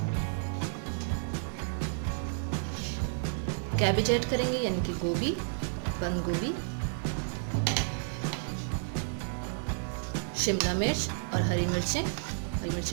कैबेज ऐड करेंगे यानी कि गोभी, बंद गोभी, शिमला मिर्च और हरी मिर्चें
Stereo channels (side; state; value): left; silent; 57 dB below the other